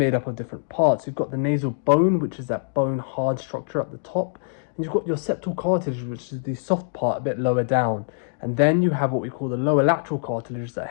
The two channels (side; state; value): right; silent; 63 dB below the other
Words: up of different parts. You've got the nasal bone, which is that bone hard structure at the top, and you've got your septal cartilage, which is the soft part a bit lower down. And then you have what we call the lower lateral cartilage that